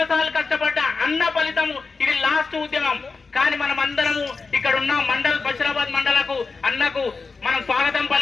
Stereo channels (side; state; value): right; quieter; 4.4 dB